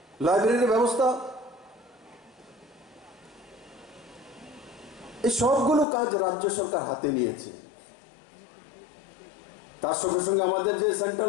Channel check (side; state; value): right; drops out; at 5.9 s